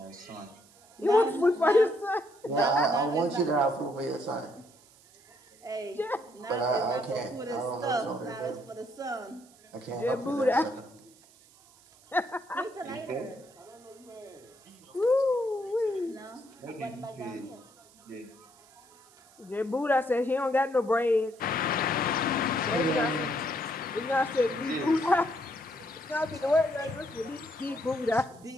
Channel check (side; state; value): right; noise; hiss, 27 dB below the sound